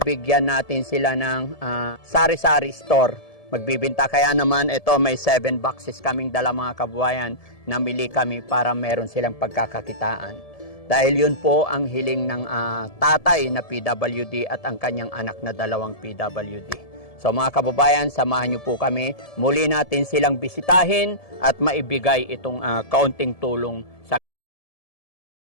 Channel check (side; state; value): right; late; 1.7 ms